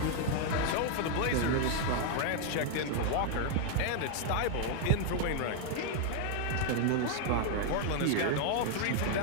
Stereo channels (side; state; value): both; different; correlation 0.00